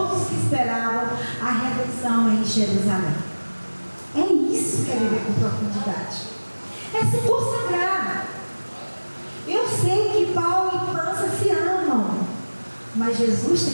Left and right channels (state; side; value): inverted; both; correlation -1.00